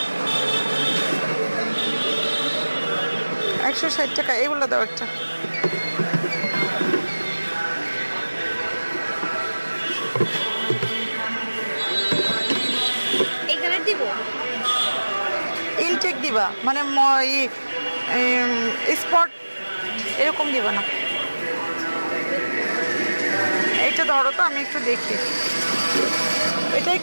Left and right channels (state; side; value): inverted; both; correlation -1.00